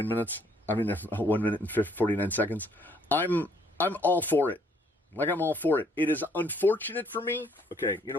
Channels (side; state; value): both; normal; correlation 0.65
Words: minutes. 1 minute and 49 seconds. I'm all for it. Like, I'm all for it. It is unfortunate for me. Okay, you